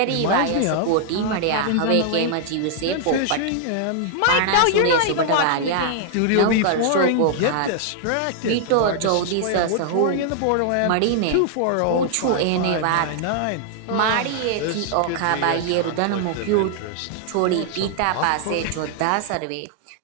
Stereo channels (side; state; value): both; different; correlation 0.00